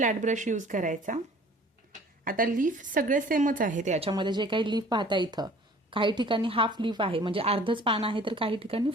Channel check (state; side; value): normal; both; correlation 0.50